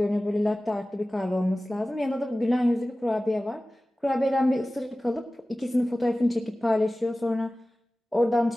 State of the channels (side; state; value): both; normal; correlation 0.97